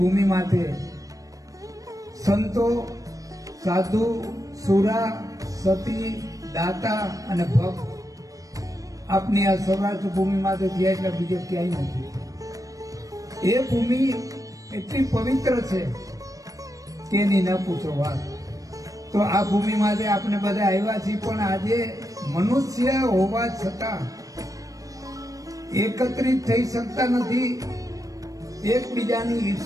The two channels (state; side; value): late; left; 0.16 ms